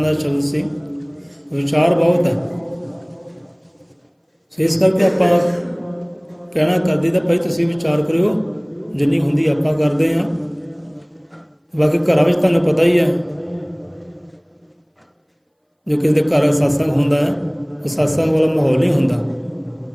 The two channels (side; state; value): both; identical; correlation 1.00